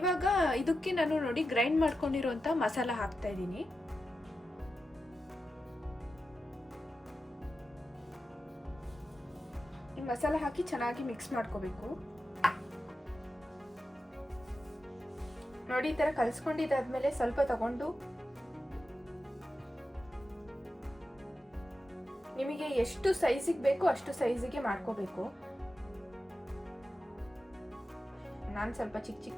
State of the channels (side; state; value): both; normal; correlation 0.91